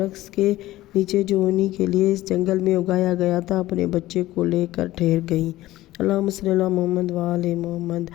کے نیچے جو انہی کے لیے اس جنگل میں اگایا گیا تھا اپنے بچے کو لے کر ٹھہر گئیں۔ اللہم صلی علی محمد و آل محمد۔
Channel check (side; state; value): right; quieter; 16.2 dB